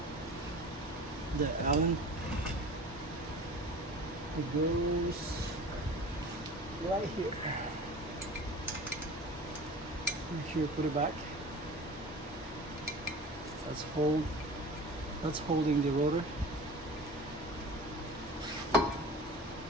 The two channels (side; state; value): both; normal; correlation 0.38